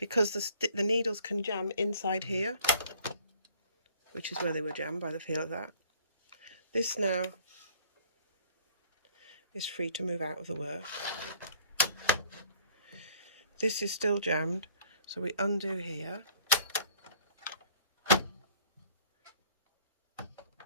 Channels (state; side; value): inverted; both; correlation -0.57